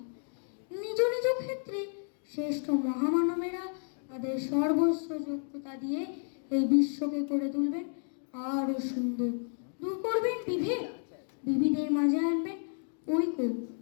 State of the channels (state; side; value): silent; right; 57 dB below the other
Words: নিজ নিজ ক্ষেত্রে শ্রেষ্ঠ মহামানবেরা তাদের সর্বস্ব যোগ্যতা দিয়ে এই বিশ্বকে করে তুলবেন আরো সুন্দর। দূর করবেন বিভেদ, বিবিধের মাঝে আনবেন ঐক্য।